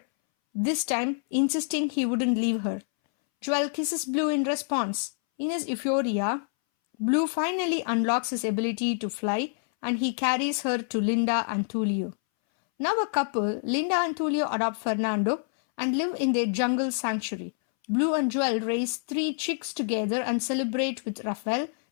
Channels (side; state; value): right; silent; 60 dB below the other